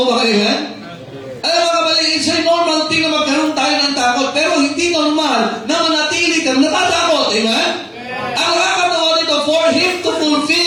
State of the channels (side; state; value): both; identical; correlation 1.00